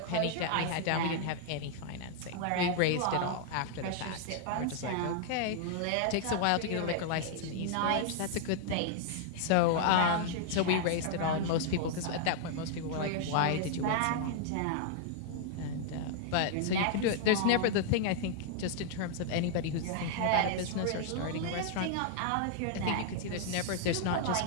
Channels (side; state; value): both; different; correlation 0.00